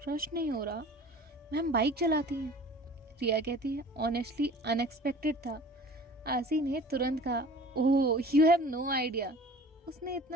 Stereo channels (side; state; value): both; normal; correlation 0.44